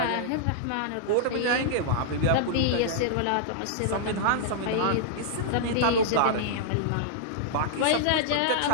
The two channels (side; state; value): both; different; correlation -0.01